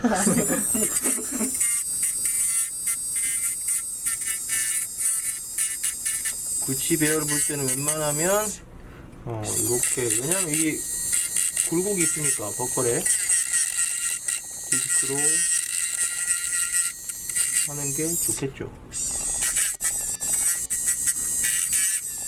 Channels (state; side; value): identical; both; correlation 1.00